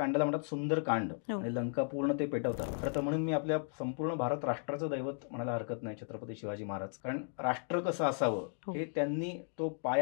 म्हणतात सुंदर कांड, आणि लंका पूर्ण ते पेटवतात. खरं तर म्हणून मी आपल्या संपूर्ण भारत राष्ट्राचं दैवत म्हणायला हरकत नाही छत्रपती शिवाजी महाराज, कारण राष्ट्र कसं असावं हे त्यांनी तो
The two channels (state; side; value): silent; right; 54 dB below the other